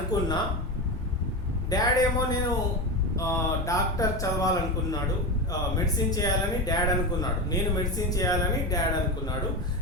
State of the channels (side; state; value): both; normal; correlation 0.20